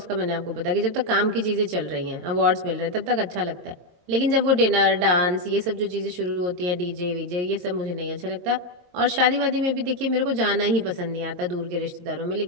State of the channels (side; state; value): left; late; 22 ms